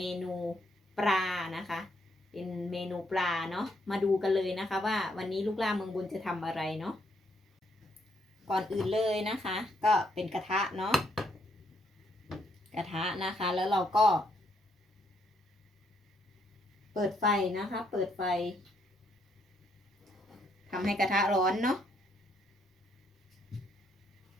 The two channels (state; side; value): normal; both; correlation 0.73